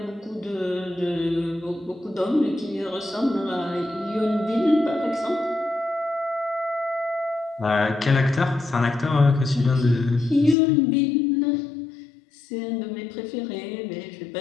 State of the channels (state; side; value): drops out; right; at 10.6 s